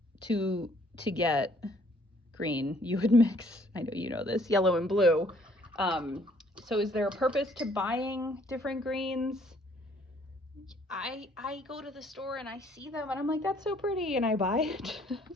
to get green, you would mix, I know you know this, yellow and blue. So is there a purpose to buying different greens? I go to the store and I see them and I'm like, that's so pretty, and I buy it.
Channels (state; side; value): normal; both; correlation 0.62